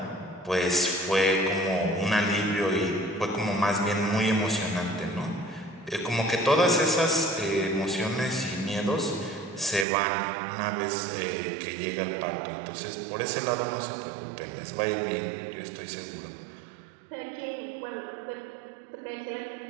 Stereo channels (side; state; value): left; drops out; at 9.9 s